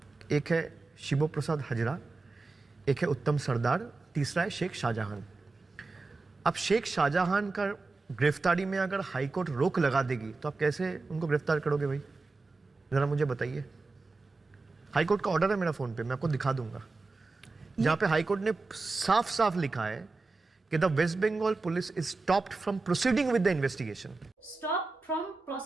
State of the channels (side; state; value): left; quieter; 3.7 dB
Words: एक है शिबो प्रसाद हजरा, एक है उत्तम सरदार, तीसरा है शेख शाहजहां। अब शेख शाहजहां का गिरफ्तारी में अगर हाईकोर्ट रोक लगा देगी तो आप कैसे उनको गिरफ्तार करोगे भाई? जरा मुझे बताइए। हाईकोर्ट का ऑर्डर है मेरा फोन पे, मैं आपको दिखा दूंगा, जहां पे हाईकोर्ट ने साफ साफ लिखा है कि the West Bengal police is stopped from proceeding with the investigation. Stop from